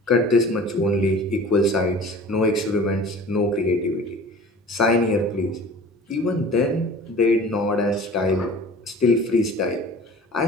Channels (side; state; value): both; normal; correlation 0.43